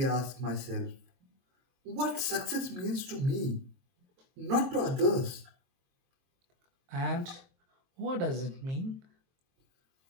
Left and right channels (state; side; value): late; left; 23 ms